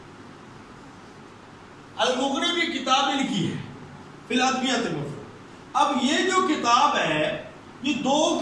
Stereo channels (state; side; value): identical; both; correlation 1.00